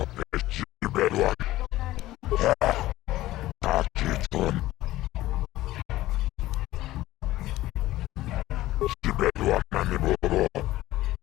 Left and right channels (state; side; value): quieter; right; 16.1 dB